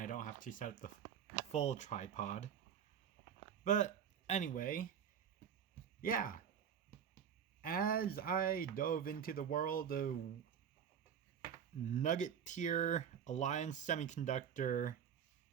I don't have to set up the full tripod. But anyway, yeah. As I dove into the world of Nugget tier Alliance Semiconductor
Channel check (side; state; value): left; quieter; 8.2 dB